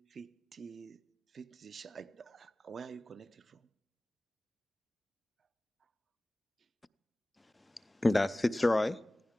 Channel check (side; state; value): both; normal; correlation 0.98